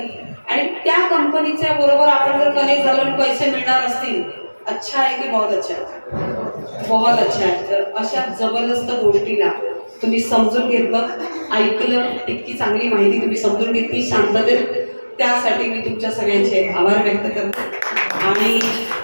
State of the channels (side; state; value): both; inverted; correlation -1.00